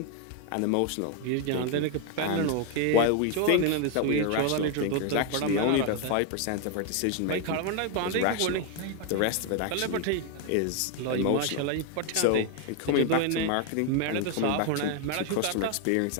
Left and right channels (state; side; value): different; both; correlation 0.01